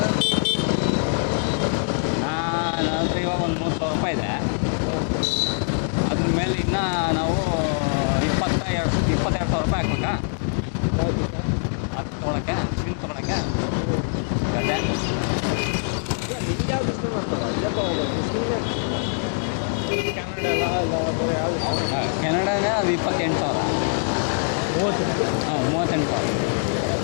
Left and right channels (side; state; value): right; silent; digital silence